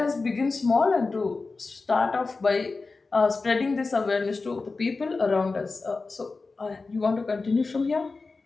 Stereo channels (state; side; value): quieter; right; 3.9 dB